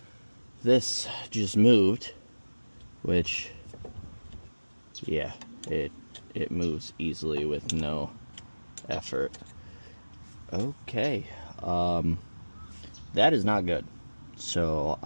this just moved, which, yeah, it moves easily with no effort. Okay, that is not good. So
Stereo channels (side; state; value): both; inverted; correlation -1.00